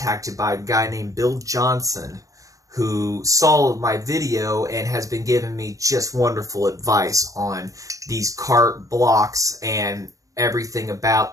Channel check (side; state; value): left; late; 0.16 ms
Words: by a guy named Bill Johnson, who saw my video and has been giving me just wonderful advice on these kart blocks and everything